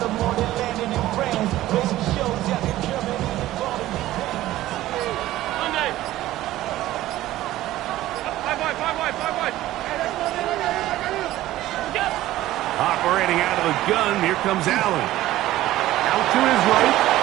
Operating out of the gun, here comes Allen. Out to his right.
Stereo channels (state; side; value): quieter; left; 15.3 dB